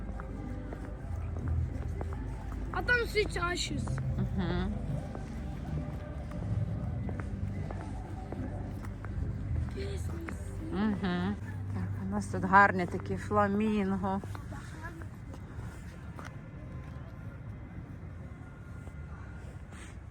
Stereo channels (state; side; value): identical; both; correlation 1.00